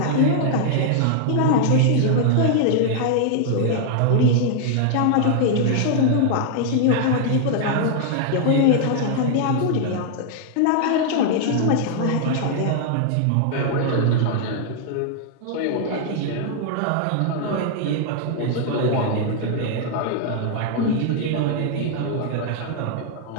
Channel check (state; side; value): different; both; correlation -0.01